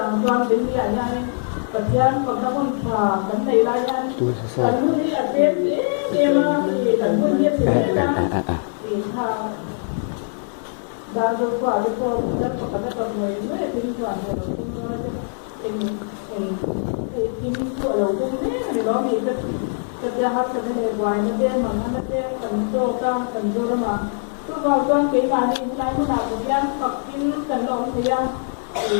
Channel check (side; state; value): right; silent; digital silence